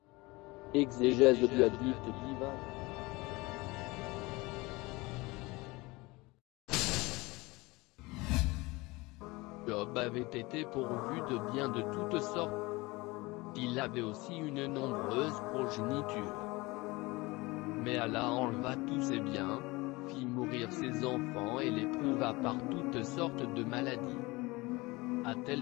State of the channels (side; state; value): right; quieter; 22.9 dB